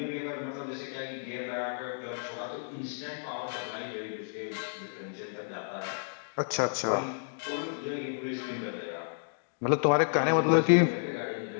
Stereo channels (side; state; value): right; silent; digital silence